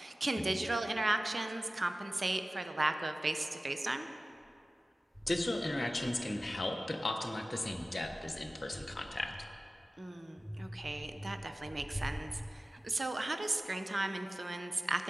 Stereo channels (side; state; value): both; normal; correlation 0.96